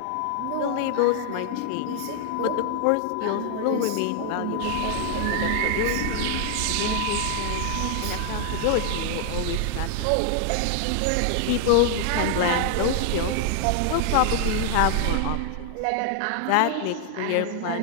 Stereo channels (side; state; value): both; different; correlation 0.00